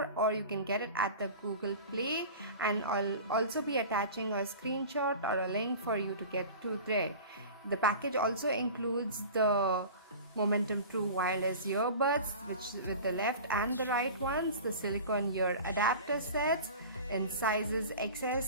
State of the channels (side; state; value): both; inverted; correlation -0.37